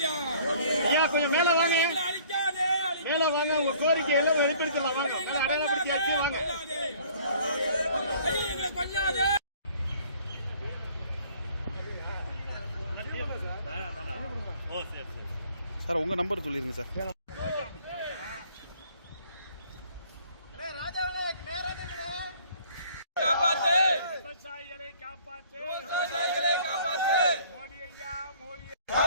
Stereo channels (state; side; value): inverted; both; correlation -0.55